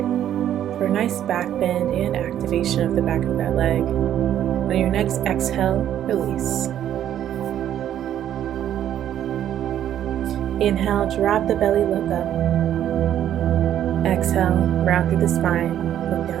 for a nice back bend and activation of the back of that leg. On your next exhale, release. Inhale, drop the belly, look up. Exhale, round through the spine, look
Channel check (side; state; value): left; quieter; 10.8 dB